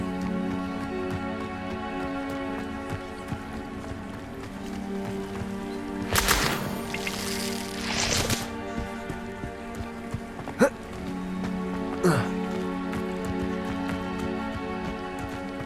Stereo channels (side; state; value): both; identical; correlation 1.00